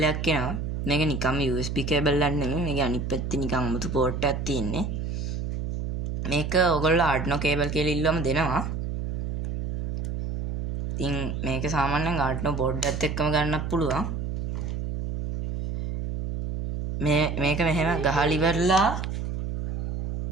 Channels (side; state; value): right; noise; hum, 4 dB below the sound